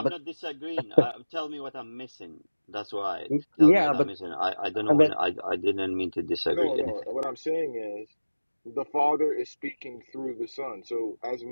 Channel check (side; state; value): both; inverted; correlation -1.00